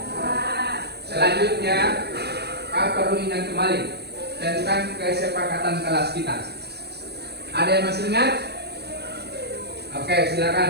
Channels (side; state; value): left; late; 0.48 ms